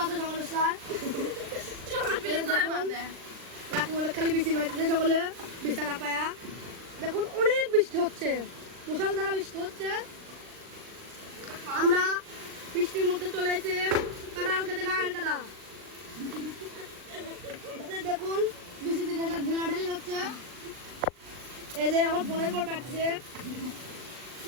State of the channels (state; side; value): late; left; 39 ms